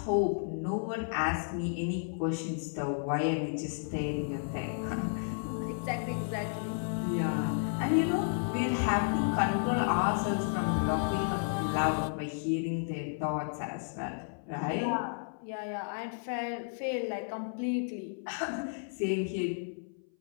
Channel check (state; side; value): silent; right; 56 dB below the other